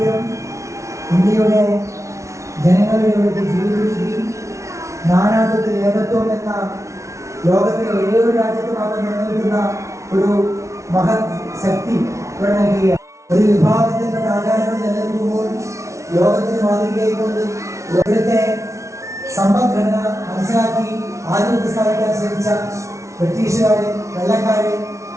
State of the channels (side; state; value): left; late; 0.14 ms